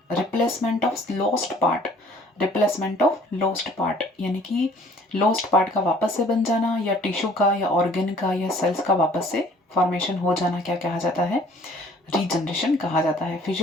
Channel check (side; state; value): both; normal; correlation 0.55